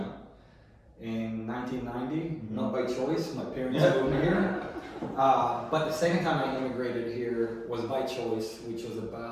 in 1990, not by choice. My parents moved me here. But the second time I immigrated here was by choice, which was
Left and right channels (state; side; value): identical; both; correlation 1.00